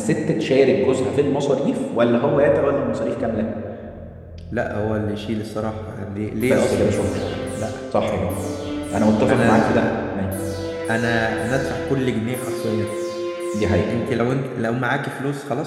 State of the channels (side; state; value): both; identical; correlation 1.00